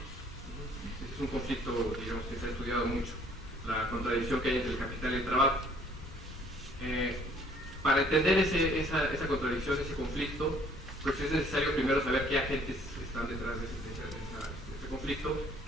Este es un conflicto, digamos, que se ha estudiado mucho, la contradicción que hay entre el capital y el trabajo. Para entender esa contradicción, ese conflicto, pues es necesario primero saber qué agentes están detrás de ese este conflicto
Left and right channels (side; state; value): both; normal; correlation 0.59